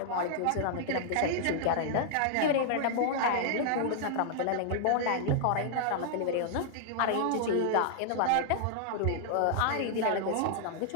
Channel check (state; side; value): different; both; correlation -0.01